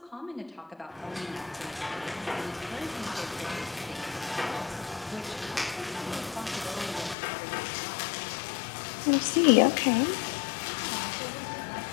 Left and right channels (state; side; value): drops out; right; at 7.2 s